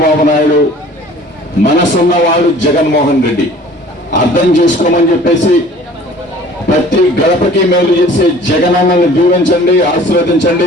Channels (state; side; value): normal; both; correlation 0.49